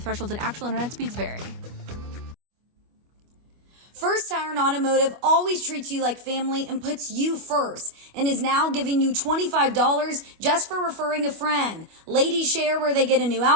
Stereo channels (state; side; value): late; left; 25 ms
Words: and actual internet speeds vary. First Tire Automotive always treats you like family and puts you first and is now giving you $25 just for referring a friend. Ladies share where they get a new